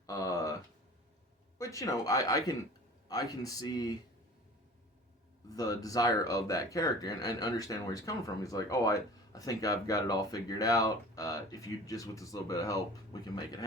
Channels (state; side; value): normal; both; correlation 0.42